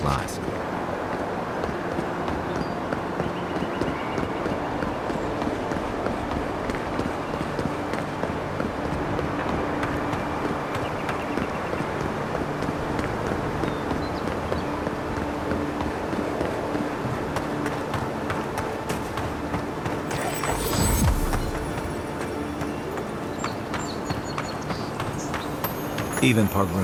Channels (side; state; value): both; identical; correlation 1.00